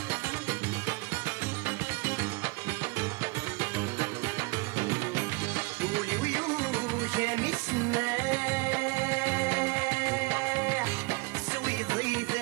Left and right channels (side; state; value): left; quieter; 26.8 dB